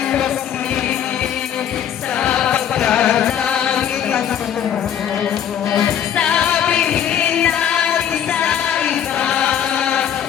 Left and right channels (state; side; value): quieter; right; 9.4 dB